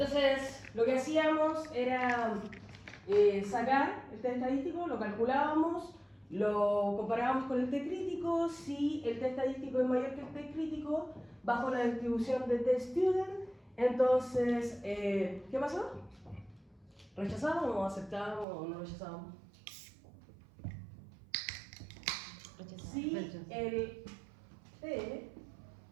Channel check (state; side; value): drops out; left; at 18.4 s